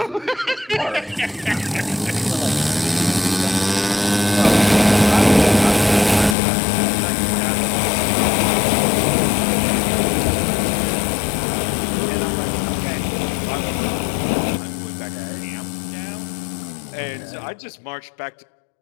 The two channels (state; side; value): drops out; right; at 6.4 s